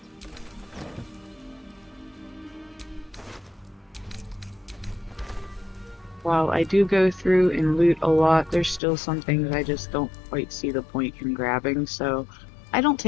while I do go through and loot a lot, there's still some things I just don't quite see the point in grabbing, so I don't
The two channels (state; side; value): drops out; right; at 8.8 s